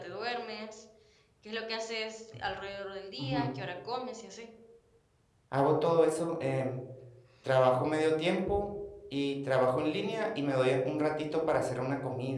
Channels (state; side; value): identical; both; correlation 1.00